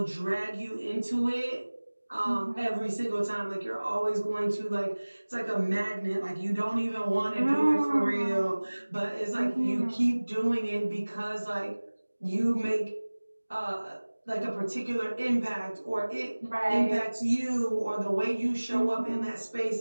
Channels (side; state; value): both; inverted; correlation -1.00